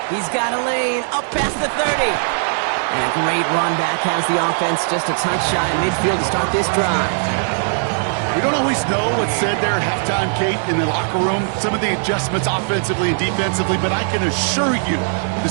He's got a lane up past the 30. And a great run back has the offense just a touch shy of midfield to start this drive. We don't always know what's said there at halftime, Kate, in the locker room. Some of the adjustments offensively and defensively, but I can assure you the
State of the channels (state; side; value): silent; left; 61 dB below the other